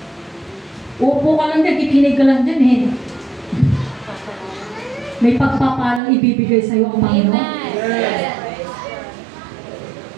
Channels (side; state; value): left; drops out; at 6.0 s